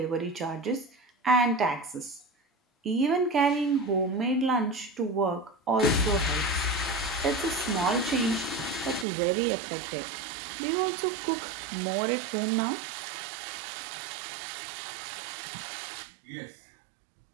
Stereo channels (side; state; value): left; drops out; at 9.1 s